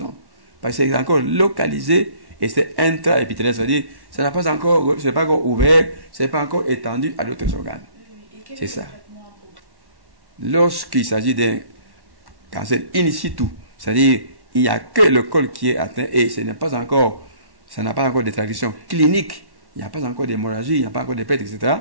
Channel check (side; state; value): left; late; 1.1 ms